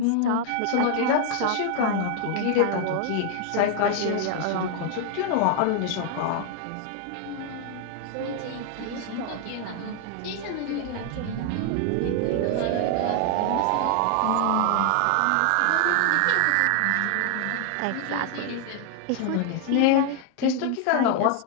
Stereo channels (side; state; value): both; different; correlation 0.00